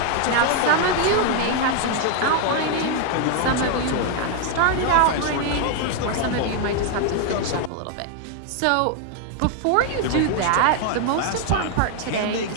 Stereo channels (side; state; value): both; different; correlation 0.00